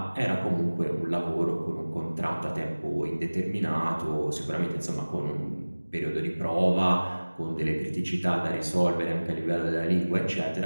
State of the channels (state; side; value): inverted; both; correlation -1.00